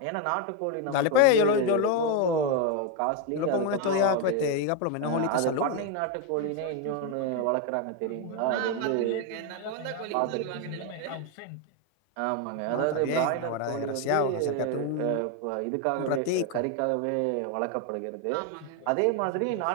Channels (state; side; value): different; both; correlation 0.02